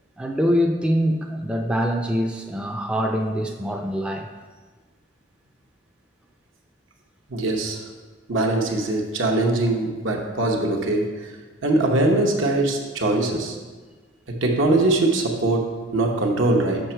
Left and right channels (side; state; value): both; normal; correlation 0.48